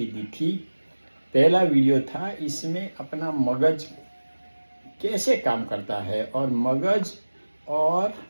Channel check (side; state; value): both; inverted; correlation -1.00